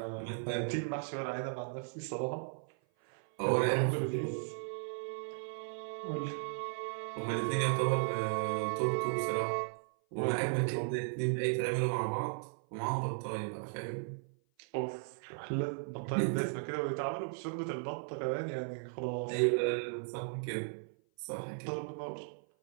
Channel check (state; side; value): silent; left; 54 dB below the other